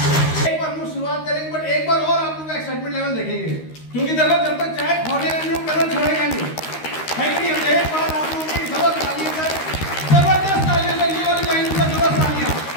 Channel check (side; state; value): right; late; 13 ms